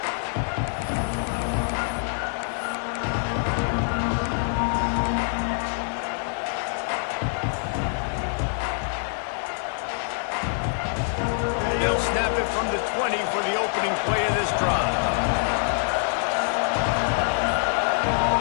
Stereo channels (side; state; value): right; silent; 62 dB below the other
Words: They'll snap it from the 20 for the opening play of this drive.